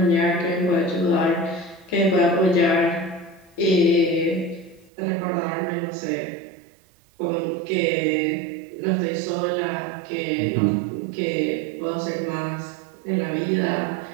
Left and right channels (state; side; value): drops out; left; at 4.9 s